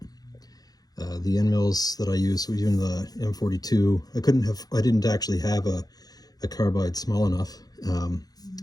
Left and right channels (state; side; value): late; right; 0.19 ms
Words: The end mills that I used, so even the M42, I didn't actually have a carbide small enough,